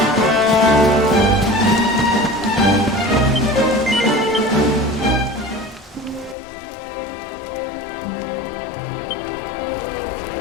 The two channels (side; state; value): right; drops out; at 6.4 s